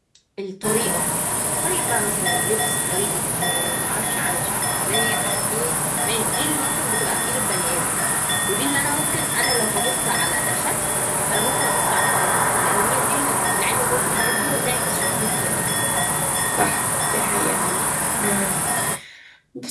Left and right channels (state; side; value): identical; both; correlation 1.00